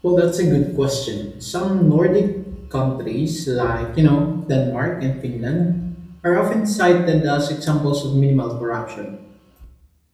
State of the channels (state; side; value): identical; both; correlation 1.00